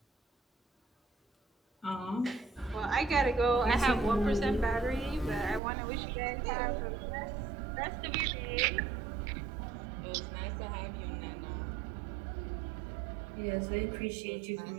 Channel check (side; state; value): left; drops out; at 5.6 s